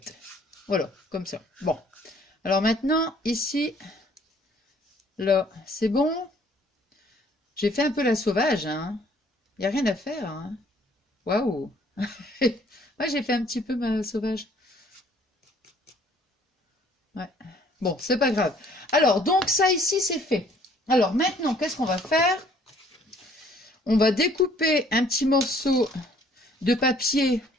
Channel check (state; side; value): normal; both; correlation 0.59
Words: Voilà, comme ça. Bon. Alors maintenant, ici, là, c'est bon. J'ai fait un peu la sauvage, hein. Il n'y a rien à faire, hein. Waouh. Moi, j'ai fait un petit peu ma sauvage. Ouais. Bon, c'est pas grave. Alors, donc ça ici, c'est fait. Alors maintenant, qu'est-ce qu'on va faire? On va découper un petit morceau de papier,